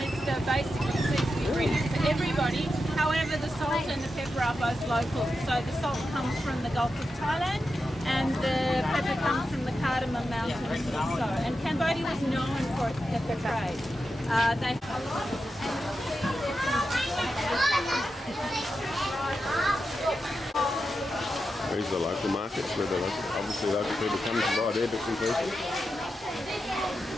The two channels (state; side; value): normal; both; correlation 0.89